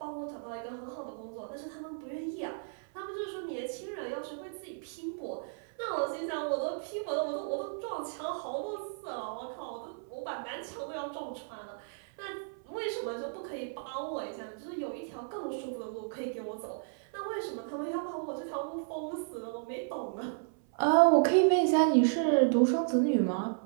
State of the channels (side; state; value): left; silent; 55 dB below the other